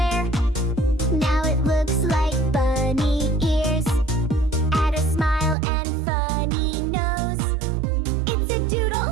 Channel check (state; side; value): drops out; left; at 5.6 s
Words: Now it looks like bunny ears. Add a smile and funny nose. It's a